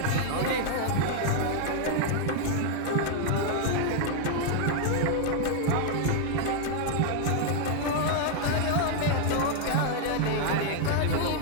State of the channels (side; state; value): both; different; correlation 0.00